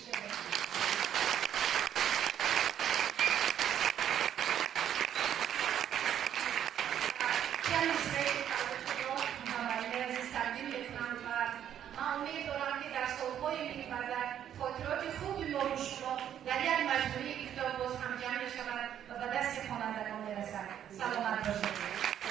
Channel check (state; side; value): quieter; left; 10.0 dB